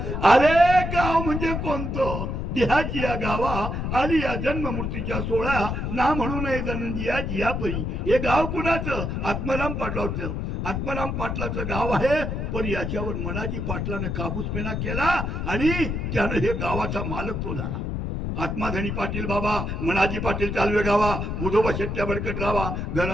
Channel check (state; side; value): noise; left; rumble, 2 dB below the sound